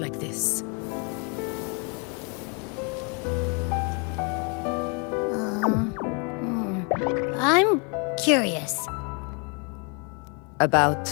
this. I'm curious. About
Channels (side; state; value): right; quieter; 35.1 dB